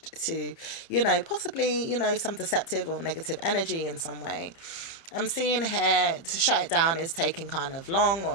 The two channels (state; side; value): late; right; 30 ms